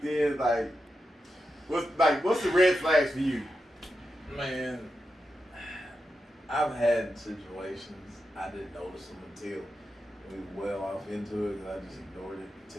in? What's the red flags for you? Man, I've had situations I didn't notice them until we were well off into it, and I just ignored it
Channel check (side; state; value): both; normal; correlation 0.88